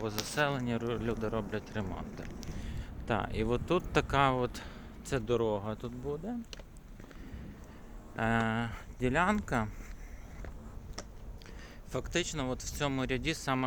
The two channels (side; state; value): both; identical; correlation 1.00